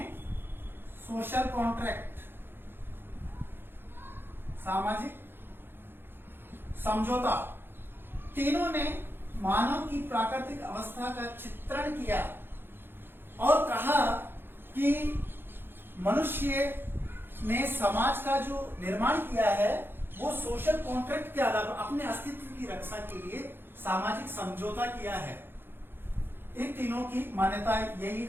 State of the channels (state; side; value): late; left; 0.10 ms